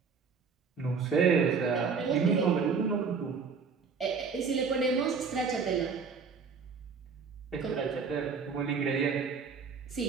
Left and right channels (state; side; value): quieter; left; 5.5 dB